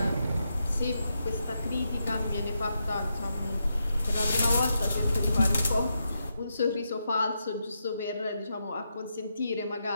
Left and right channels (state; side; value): inverted; both; correlation -0.84